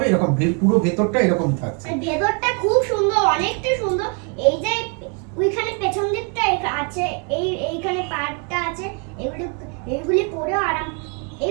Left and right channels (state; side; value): quieter; left; 35.9 dB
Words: এরকম, পুরো ভেতরটা এরকম থাকছে। আর ভেতরটা খুব সুন্দর, অনেকটা সুন্দর। এই যে ওইখানে পেছন দিকটা আছে, এইখানে পাড়টা আছে, এগুলি পরে আরাম,